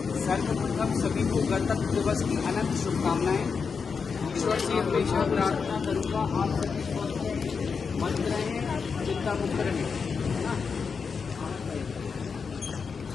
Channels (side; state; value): right; quieter; 5.6 dB